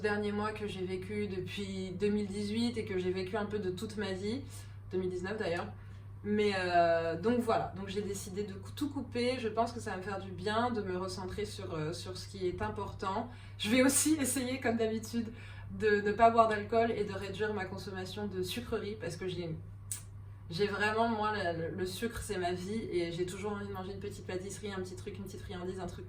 derniers mois que j'ai vécu depuis 2018 et que j'ai vécu un peu de toute ma vie, 2019 d'ailleurs. Mais donc voilà, donc j'ai décidé de tout couper. Je pense que ça va me faire du bien de me recentrer sur ce qui est important. Je vais aussi essayer comme d'habitude de ne pas boire d'alcool et de réduire ma consommation de sucreries, parce que j'ai vraiment, moi, le sucre, c'est ma vie, et j'ai toujours envie de manger une petite pâtisserie, un petit truc, une petite friandise, un truc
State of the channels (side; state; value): both; identical; correlation 1.00